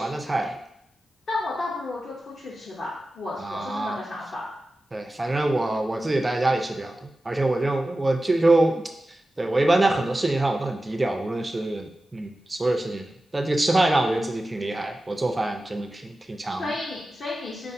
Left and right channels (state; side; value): normal; both; correlation 0.94